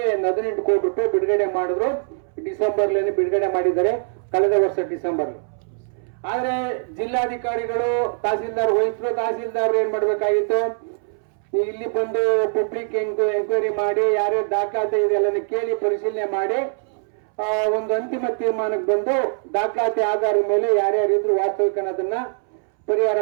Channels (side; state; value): left; silent; 64 dB below the other